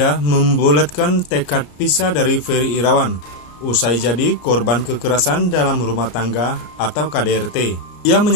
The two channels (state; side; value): late; right; 34 ms